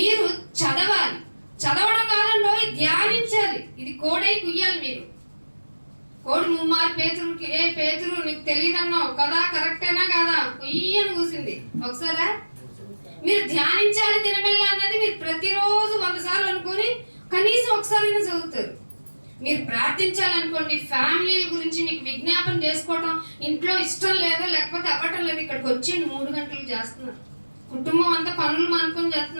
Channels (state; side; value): inverted; both; correlation -1.00